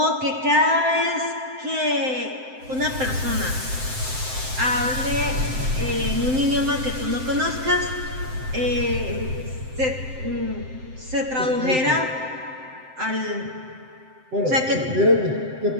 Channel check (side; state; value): left; late; 7.7 ms